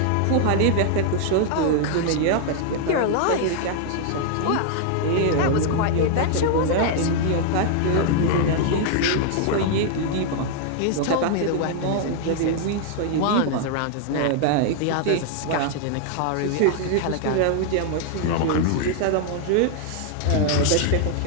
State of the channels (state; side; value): different; both; correlation 0.00